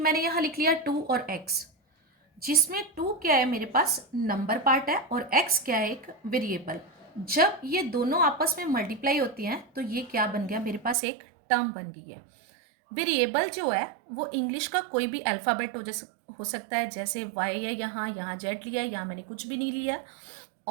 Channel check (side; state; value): left; drops out; at 11.0 s